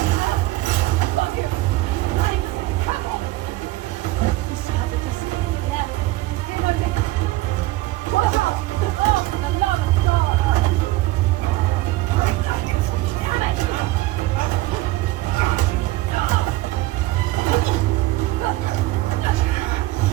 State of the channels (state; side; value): quieter; left; 18.5 dB